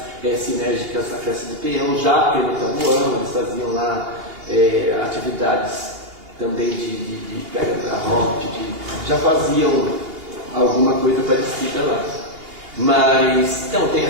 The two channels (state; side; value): late; left; 2.8 ms